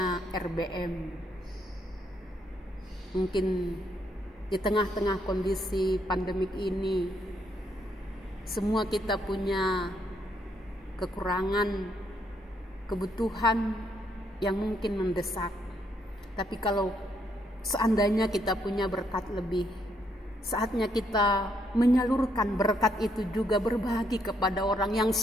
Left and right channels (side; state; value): both; normal; correlation 0.74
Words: RBM. Mungkin di tengah-tengah kondisi pandemik ini, semua kita punya kekurangan, kebutuhan yang mungkin mendesak. Tapi kalau seandainya kita punya berkat lebih, saatnya kita menyalurkan berkat itu juga, berbagi kepada orang yang